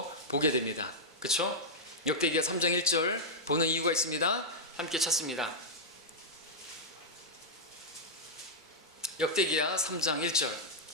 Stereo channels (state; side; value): normal; both; correlation -0.06